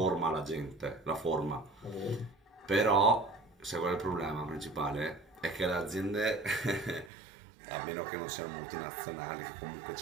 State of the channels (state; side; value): drops out; left; at 7.1 s